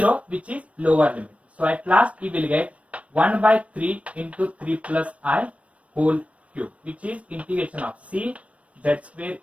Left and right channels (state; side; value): late; left; 0.064 ms